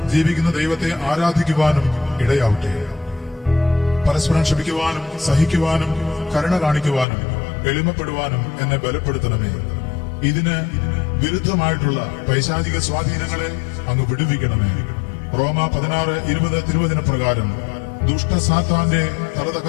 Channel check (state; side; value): drops out; right; at 7.1 s